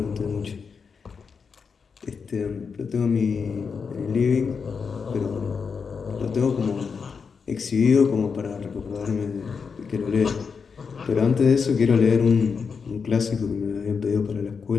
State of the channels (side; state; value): right; quieter; 5.7 dB